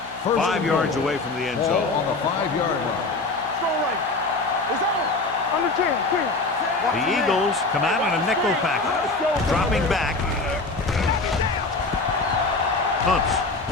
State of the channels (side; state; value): right; quieter; 3.4 dB